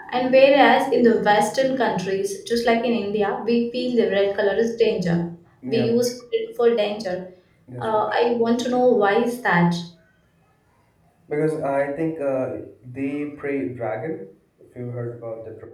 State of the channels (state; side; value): identical; both; correlation 1.00